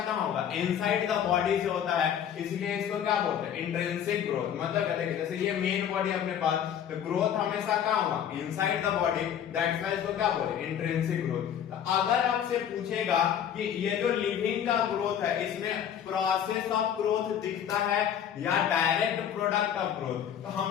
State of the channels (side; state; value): right; quieter; 9.2 dB